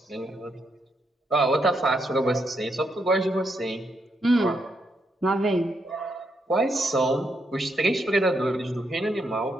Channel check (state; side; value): normal; both; correlation 0.79